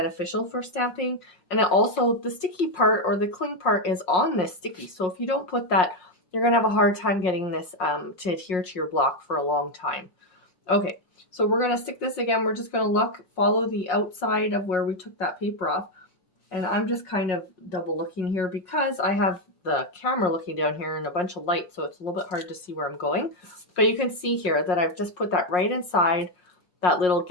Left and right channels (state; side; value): late; right; 1.4 ms